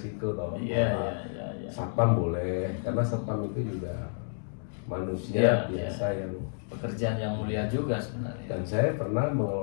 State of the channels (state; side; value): silent; right; digital silence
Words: toh. Iya. Satpam boleh, karena satpam itu juga manusia biasa yang pekerjaan yang mulia juga sebenarnya. Dan saya pernah